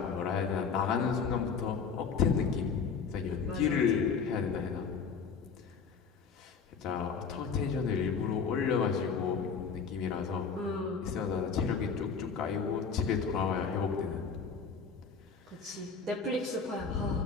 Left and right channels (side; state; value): right; quieter; 5.7 dB